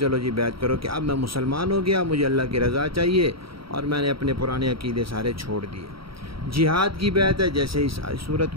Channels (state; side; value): late; left; 0.75 ms